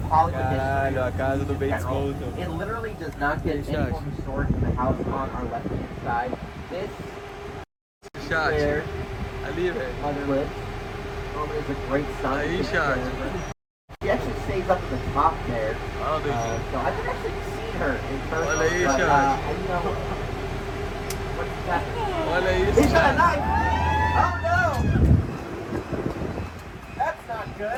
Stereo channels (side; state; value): both; identical; correlation 1.00